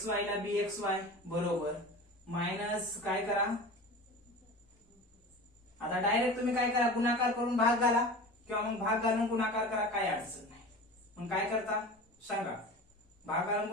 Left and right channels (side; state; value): both; normal; correlation 0.35